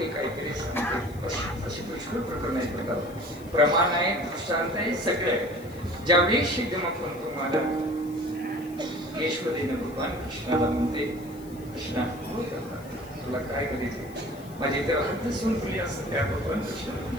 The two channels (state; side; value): noise; left; hiss, 23 dB below the sound